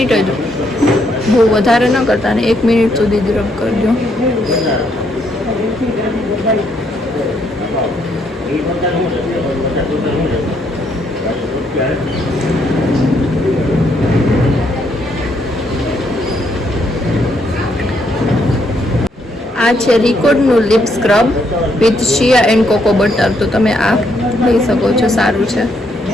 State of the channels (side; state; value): both; normal; correlation 0.73